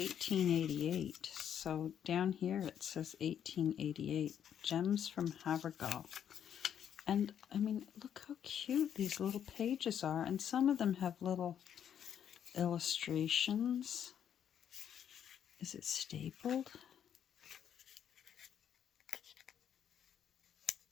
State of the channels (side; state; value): right; quieter; 9.1 dB